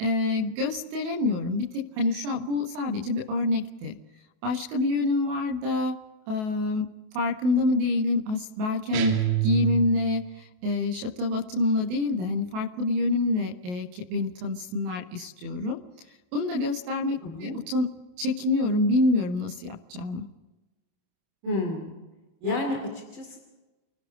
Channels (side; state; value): left; late; 28 ms